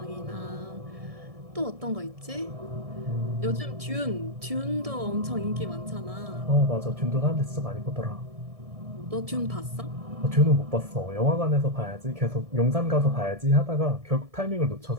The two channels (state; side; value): late; left; 1.7 ms